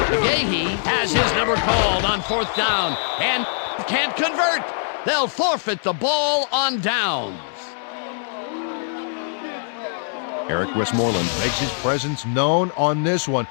has his number called on 4th down and can't convert. They'll forfeit the ball on downs. Eric Westmoreland makes his presence known on this one.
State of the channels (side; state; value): right; silent; digital silence